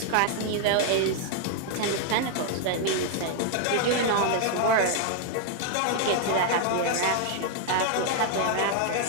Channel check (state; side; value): different; both; correlation 0.00